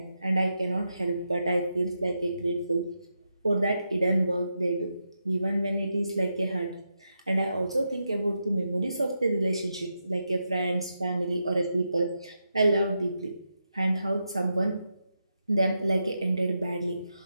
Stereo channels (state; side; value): inverted; both; correlation -0.85